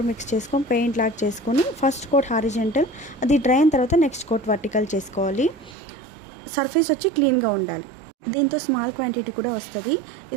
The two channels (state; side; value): drops out; left; at 5.8 s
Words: మిక్స్ చేసుకొని పెయింట్ లాక్ చేసుకొని ఫస్ట్ కోట్ హారిజెంటల్, అది డ్రై అయిన తర్వాత నెక్స్ట్ కోట్ వర్టికల్ చేసుకోవాలి. సర్ఫేస్ వచ్చి క్లీన్గా ఉండాలి. దీంతో స్మాల్ క్వాంటిటీ కూడా వస్తుంది.